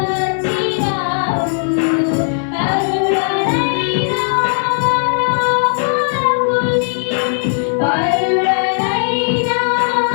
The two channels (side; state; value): right; silent; digital silence